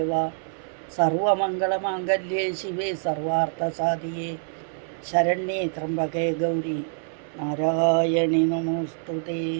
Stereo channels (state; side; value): silent; left; 61 dB below the other